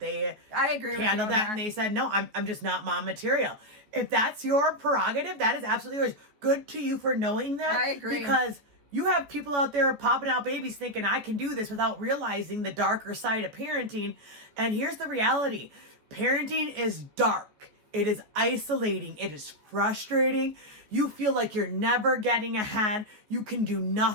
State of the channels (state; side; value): late; left; 14 ms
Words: I agree with handled you that, and they said, no, I'm just not mom material. If that's your prerogative, that is absolutely yours. Good to you for knowing that. I agree. Because you have people out there popping out babies thinking I can do this without realizing the darker side of parenting. And here's the reality. Parenting is dark. It is isolating. It is frustrating. You feel like you're never getting ahead. You can do